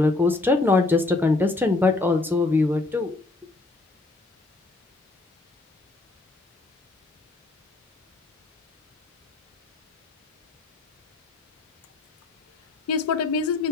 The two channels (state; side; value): quieter; right; 3.2 dB